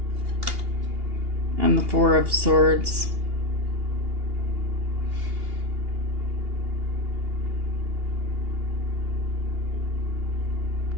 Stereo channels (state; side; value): late; left; 2.8 ms